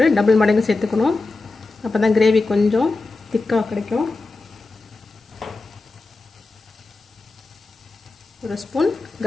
டபுள் மடங்கு சேர்த்துக்கணும். அப்போ தான் கிரேவி கொஞ்சம் திக்காக கிடைக்கும். 1 ஸ்பூன்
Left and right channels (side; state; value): right; quieter; 3.5 dB